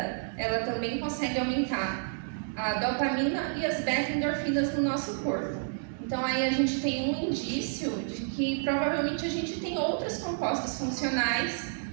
ela também consegue aumentar a dopamina e as beta-endorfinas no nosso corpo. Então aí a gente tem um indício de que provavelmente a gente tem outros compostos funcionais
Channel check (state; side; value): silent; left; digital silence